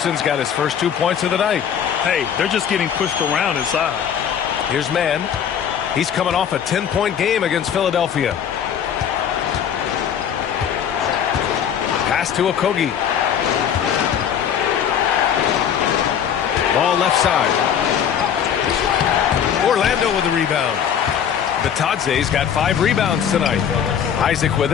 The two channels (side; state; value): right; quieter; 8.5 dB